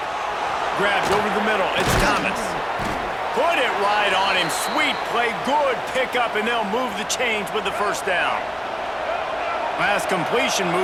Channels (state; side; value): identical; both; correlation 1.00